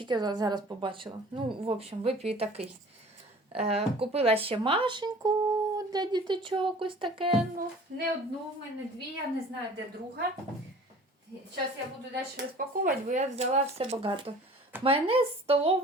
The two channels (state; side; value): normal; both; correlation 0.46